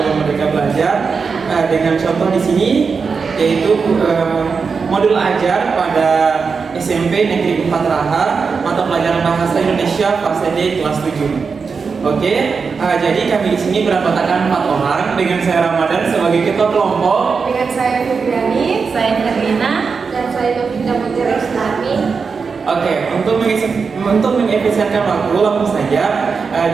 Merdeka Belajar dengan contoh di sini, yaitu modul ajar pada SMP Negeri 4 Raha, mata pelajaran Bahasa Indonesia fase D kelas 7. Oke, jadi kami di sini beranggotakan 4 orang dengan saya Ramadan sebagai ketua kelompok, dengan saya Fibriani, Saya Herlina. dan saya Novita Mutiara Islami. Oke, untuk mengefisienkan waktu langsung saja.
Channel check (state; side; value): quieter; left; 5.2 dB